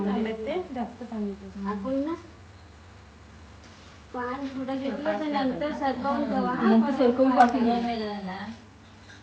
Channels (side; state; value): both; identical; correlation 1.00